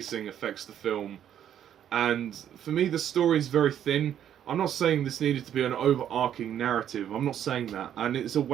affects the film. And for me, the story is very thin. I'm not saying this needed to be an overarching narrative. I'm not saying that. And it's a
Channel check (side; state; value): left; quieter; 10.0 dB